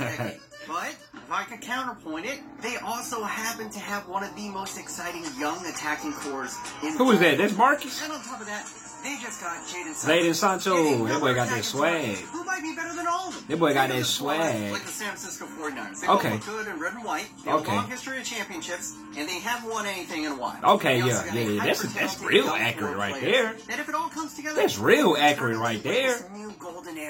But if I could counterpoint it, they also happen to have one of the most exciting young attacking cores in Who is that? That's Marcus? And on top of that, they just got Jadon Sancho. That boy got that swag. Who might be better than all of them? That boy got that swag. Like the San Francisco 49ers. They okay. look good in red and white. They have a long history of championships, and they haven't won anything in a while. Okay, yeah. That's real accurate right there. And if it all comes together, that's real accurate right there. It's a new golden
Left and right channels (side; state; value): both; identical; correlation 1.00